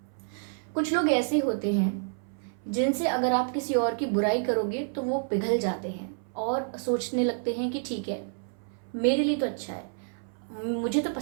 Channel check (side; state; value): left; silent; 59 dB below the other